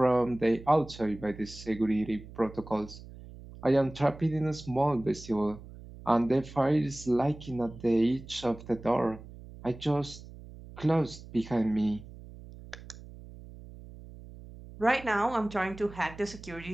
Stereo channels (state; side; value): noise; right; hum, 16 dB below the sound